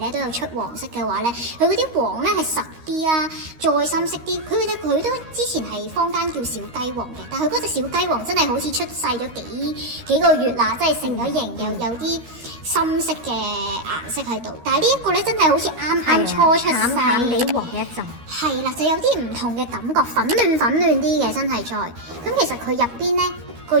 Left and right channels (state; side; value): late; left; 13 ms